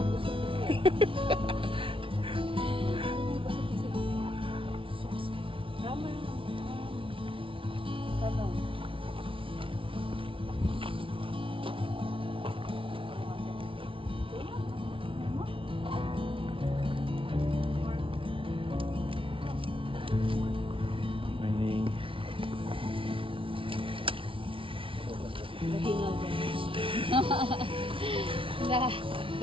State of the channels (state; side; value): late; left; 0.25 ms